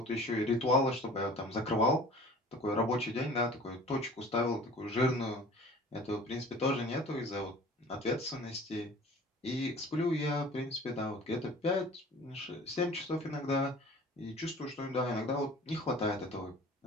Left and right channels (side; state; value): both; normal; correlation 0.45